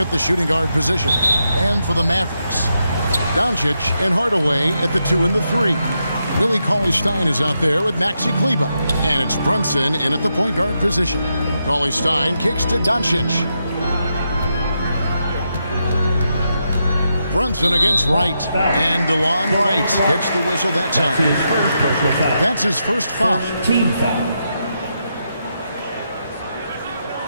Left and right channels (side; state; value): both; inverted; correlation -0.83